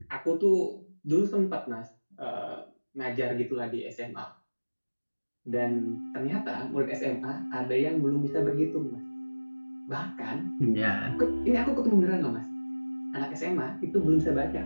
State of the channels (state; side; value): inverted; both; correlation -1.00